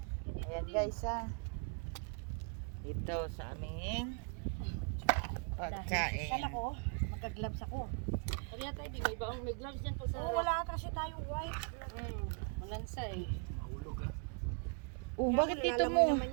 Ayan guys ha. Dito sa aming pagkain. Sala ko, nagka-gloves ako. Kaya tayo, di may baong may gloves dyan pag sa Oh, wala kasi tayong white. malansa eh. Oh, bakit dito Lalamoy mo? naman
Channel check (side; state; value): left; quieter; 39.4 dB